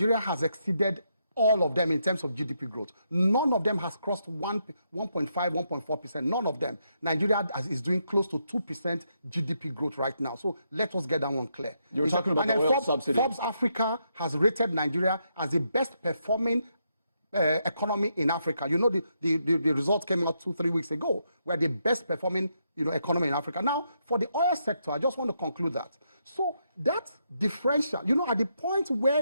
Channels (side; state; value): both; inverted; correlation -0.79